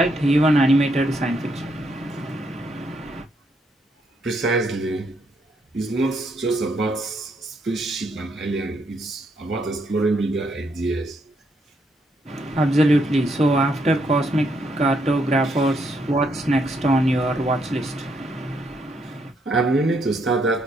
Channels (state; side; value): normal; both; correlation 0.75